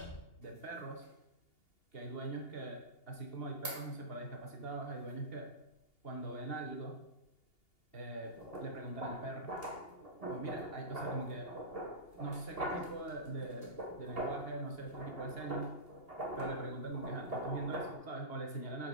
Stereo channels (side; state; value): right; late; 2.8 ms